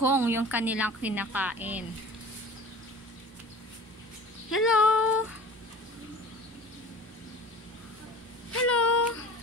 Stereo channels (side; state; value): both; normal; correlation 0.40